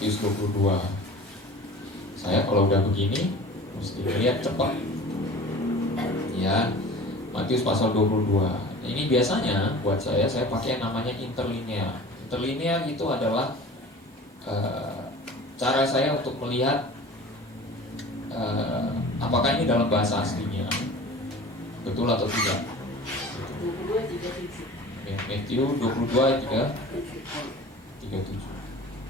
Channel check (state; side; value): normal; both; correlation 0.41